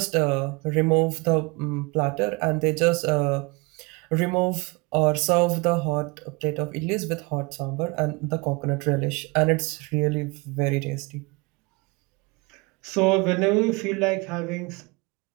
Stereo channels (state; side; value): quieter; left; 26.9 dB